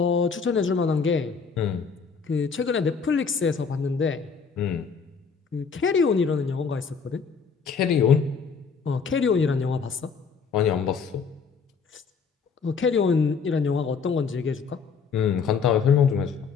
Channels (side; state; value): right; quieter; 5.7 dB